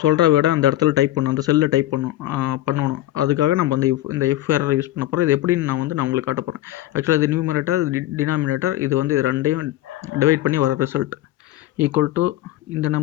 சொல்கிற விட அந்த இடத்துல டைப் பண்ணணும், அந்த செல்லில் டைப் பண்ணணும். அதுக்காக நம்ம இந்த இஃப் எரர் யூஸ் பண்ண போகிறோம். இது எப்படின்னு நான் உங்களுக்கு காட்ட போகிறேன். ஆக்சுவலாக இது நியூமரேட்டர், டினாமினேட்டர். இது வந்து இது ரெண்டையும் டிவைட் பண்ணி வர ரிசல்ட் ஈக்குவல் டு இந்த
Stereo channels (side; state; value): right; quieter; 14.6 dB